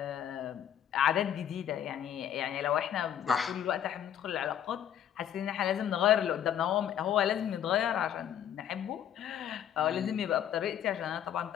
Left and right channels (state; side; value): quieter; right; 9.9 dB